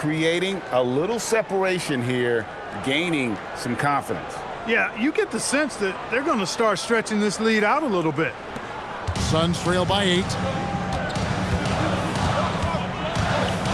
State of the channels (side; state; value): both; identical; correlation 1.00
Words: a little separation here, gaining some confidence. Yeah, you get the sense that they're going to start stretching this lead out a little bit. Suns trail by 8.